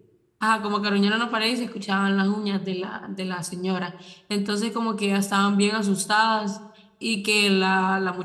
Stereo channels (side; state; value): both; identical; correlation 1.00